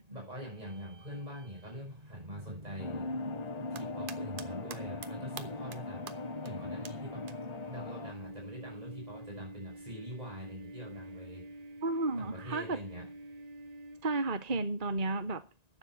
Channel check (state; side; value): late; left; 1.9 ms